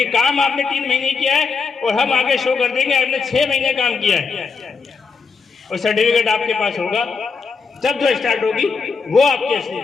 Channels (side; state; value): right; quieter; 5.1 dB